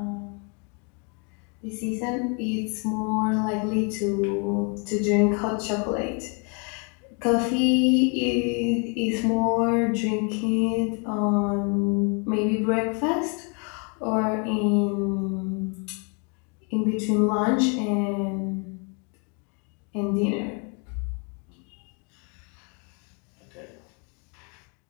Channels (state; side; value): quieter; right; 36.2 dB